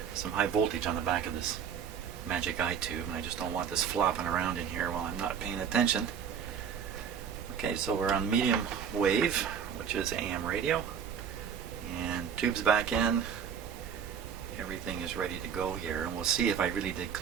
Some high voltage on the back of this magic eye tube, and I just don't want this flopping around in here while I'm not paying attention. Okay, so we're on medium wave, which is AM radio, and tube's back in. Everything is ready to go here, and we'll see if I really did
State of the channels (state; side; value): quieter; left; 7.6 dB